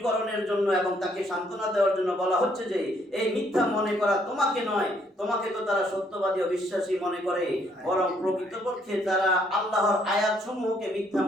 জন্য এবং তাকে সান্ত্বনা দেওয়ার জন্য বলা হচ্ছে যে এই মিথ্যা মনে করা তোমাকে নয়, তোমাকে তো তারা সত্যবাদী ও বিশ্বাসী মনে করে, বরং প্রকৃতপক্ষে তারা আল্লাহর আয়াতসমূহকে মিথ্যা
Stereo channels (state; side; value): normal; both; correlation 0.68